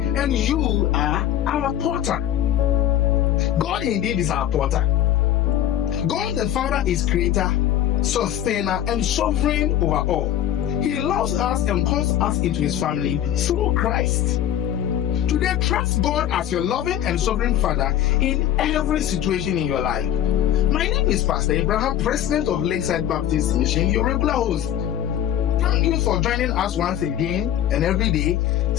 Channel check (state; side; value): quieter; right; 11.4 dB